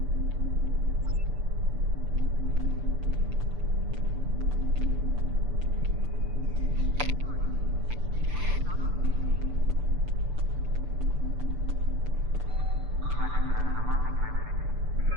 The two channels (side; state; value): left; late; 6.9 ms